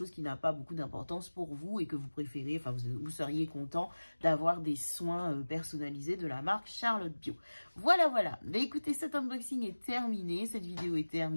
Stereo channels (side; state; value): both; inverted; correlation -1.00